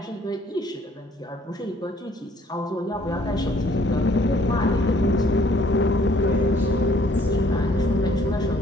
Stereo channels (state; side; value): normal; both; correlation 0.61